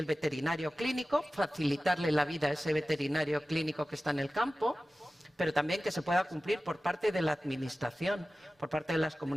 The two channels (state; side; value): normal; both; correlation 0.96